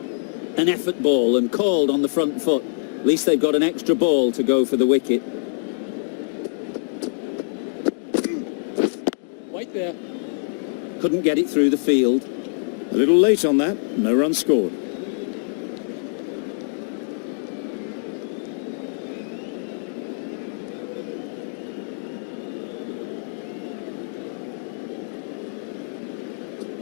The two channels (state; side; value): silent; right; digital silence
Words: An effort ball and called on the front foot. At least they've got an extra ball to go for the wicket. White there. Couldn't get it through the field. A little late on that, no run scored.